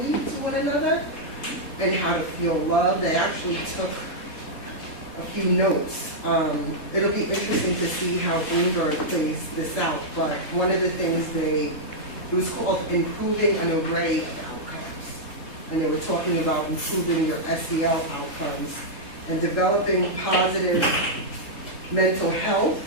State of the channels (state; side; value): late; right; 3.7 ms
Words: to one another and how to feel loved. They actually took a few notes. It'll be interesting to see how Bloomberg plays this out, but one of the things it was called Improving an Array of Outcomes. And they were talking about improving your SEL outcomes and developing positive mental health